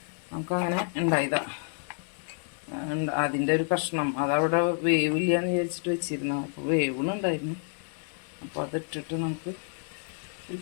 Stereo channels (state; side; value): silent; right; 58 dB below the other